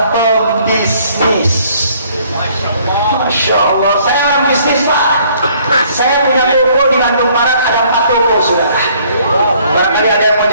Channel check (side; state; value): both; inverted; correlation -0.61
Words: pembisnis. Masya Allah, saya orang bisnis Pak. Saya punya toko di Bandung Barat, ada 4 toko, saudara. Barangkali ada yang mau